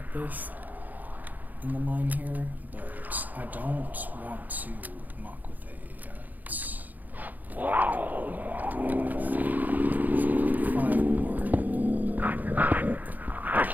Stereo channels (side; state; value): left; late; 0.082 ms